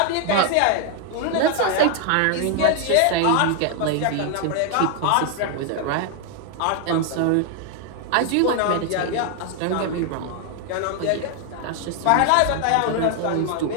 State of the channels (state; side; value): different; both; correlation 0.00